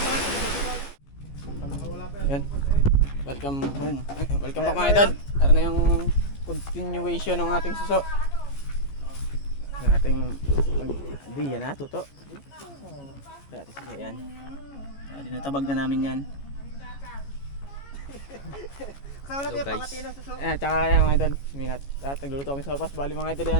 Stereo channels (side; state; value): right; late; 14 ms